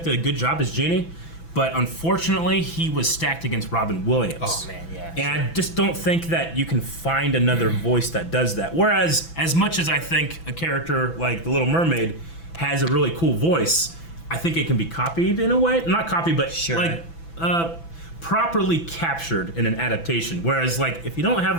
did a good job as Genie, but unfortunately, he was stacked against Robin Williams. Oh, man, yeah. And I just don't think that you can find another voice that does that. Whereas, as much as I think a character like the Little Mermaid has a really cool voice, I think it can be copied in a way. Not copied, but Sure. like properly captured in an adaptation. Whereas, like, if you don't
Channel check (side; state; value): right; late; 6.0 ms